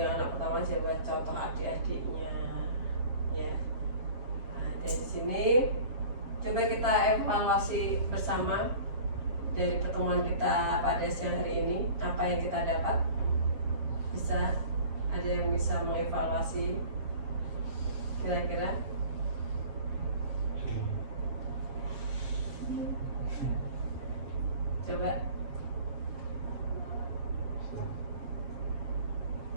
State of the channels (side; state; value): left; late; 7.5 ms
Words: anak pertama jadi contoh adik-adiknya, ya. Dari sini coba kita evaluasi bersama dari pertemuan kita pada siang hari ini, apa yang kita dapat. Bisa ada yang bisa mengevaluasi kira-kira? Coba.